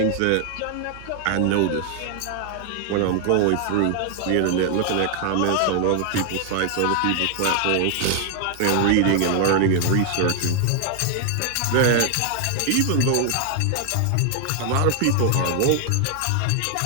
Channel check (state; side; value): different; both; correlation 0.00